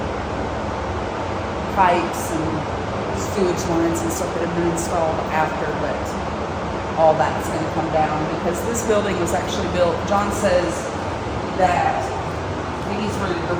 pipes and sewage lines and stuff that have been installed after, but all that's going to come down because this building was actually built. John says that these were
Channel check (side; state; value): both; identical; correlation 1.00